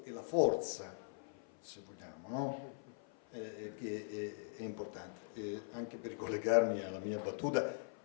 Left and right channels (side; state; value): right; silent; 50 dB below the other